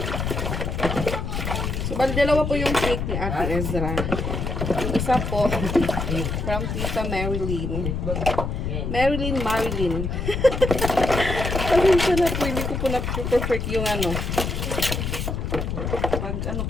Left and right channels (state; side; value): noise; left; rumble, 2 dB below the sound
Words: So, bali dalawa po yung cake ni Ate Ezra. Yung isa po, from Tita Marilyn. Bag. Yan. Marilyn. Pasensya na po, hindi ko po na-perfect yung ano. Pag ano